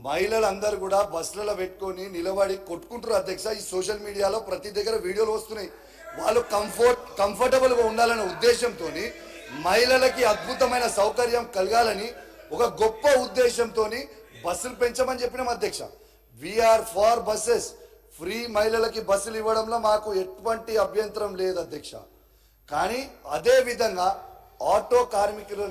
కూడా బస్సులలో పెట్టుకొని నిలబడి కొట్టుకుంటారు అధ్యక్ష. ఈ సోషల్ మీడియాలో ప్రతి దగ్గర వీడియోలు వస్తున్నాయి. వాళ్ళు కంఫర్టబుల్గా ఉండాలనే ఉద్దేశంతో మహిళలకి అద్భుతమైన సౌకర్యం కలగాలని ఒక గొప్ప ఉద్దేశంతో బస్సులు పెంచమని చెప్పినాం అధ్యక్ష. We are far buses. ఫ్రీ మహిళలకి బస్సులు ఇవ్వడంలో మాకు ఎటువంటి అభ్యంతరం లేదు అధ్యక్ష. కానీ అదే విధంగా ఆటో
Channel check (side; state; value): both; identical; correlation 1.00